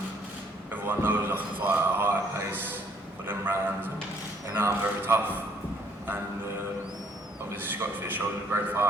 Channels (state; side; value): normal; both; correlation 0.64